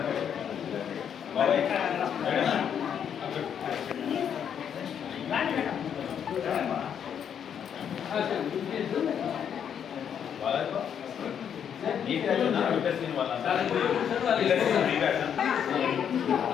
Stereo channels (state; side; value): quieter; right; 8.4 dB